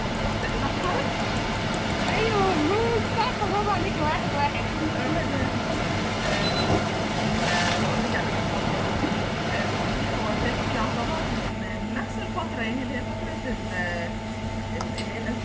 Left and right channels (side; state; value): both; identical; correlation 1.00